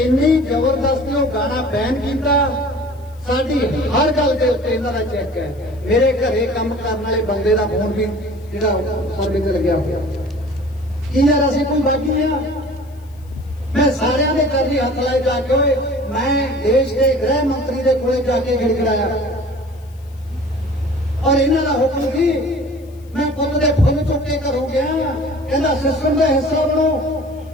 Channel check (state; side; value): noise; left; hiss, 30 dB below the sound